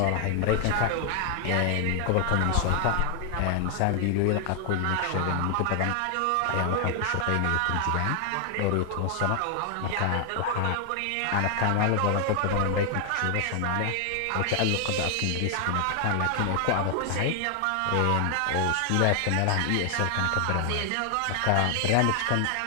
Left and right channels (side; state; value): both; different; correlation 0.00